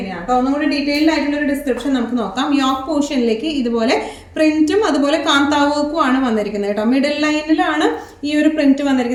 കേട്ടോ? ഒന്നുകൂടി ഡീറ്റെയിൽഡ് ആയിട്ടുള്ള ഒരു ഡിസ്ക്രിപ്ഷൻ നമുക്ക് നോക്കാം. യോക്ക് പോർഷനിലേക്ക് ഇതുപോലെ പ്രിന്റും അതുപോലെ കാന്താ വർക്കും ആണ് വന്നിരിക്കുന്നത് കേട്ടോ. മിഡിൽ ലൈനിലാണ് ഈ ഒരു പ്രിന്റ്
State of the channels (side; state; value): both; identical; correlation 1.00